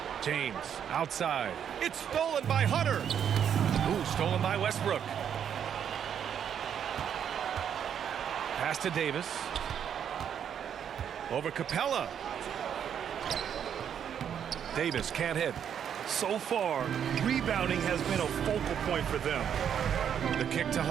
James outside. It's stolen by Hunter. Ooh, stolen by Westbrook. Pass to Davis. Over Capella. Davis can't hit. So far, rebounding has been a focal point for them. The kick to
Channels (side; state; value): left; quieter; 8.6 dB